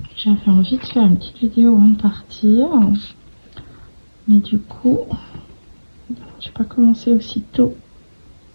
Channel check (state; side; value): inverted; both; correlation -1.00